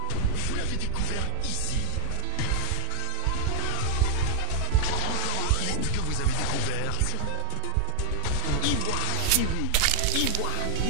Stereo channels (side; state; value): both; different; correlation 0.01